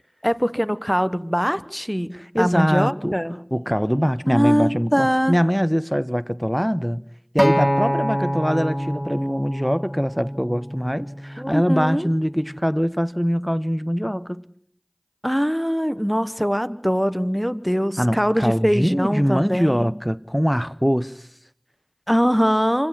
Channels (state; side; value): identical; both; correlation 1.00